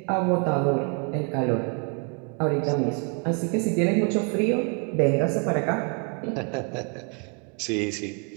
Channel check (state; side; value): quieter; left; 38.2 dB